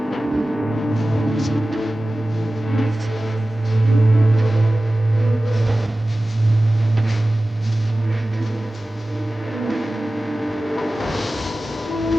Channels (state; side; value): normal; both; correlation 0.96